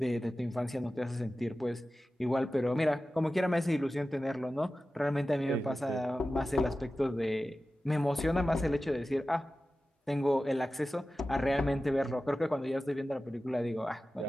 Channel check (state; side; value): normal; both; correlation 0.95